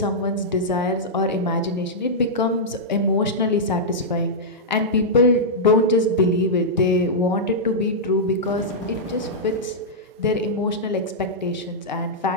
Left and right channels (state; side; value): normal; both; correlation -0.09